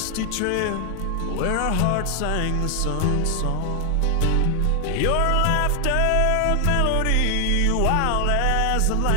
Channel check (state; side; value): different; both; correlation 0.00